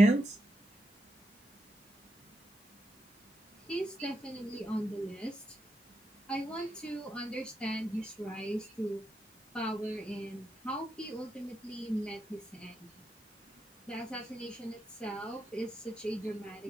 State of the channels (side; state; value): both; normal; correlation 0.84